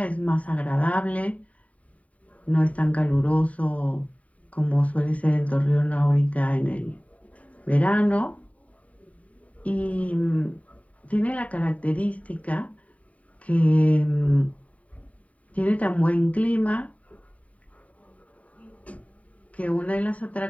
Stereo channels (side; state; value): right; late; 0.068 ms